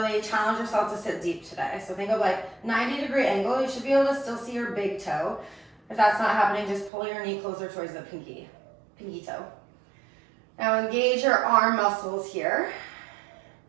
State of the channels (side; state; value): left; drops out; at 6.9 s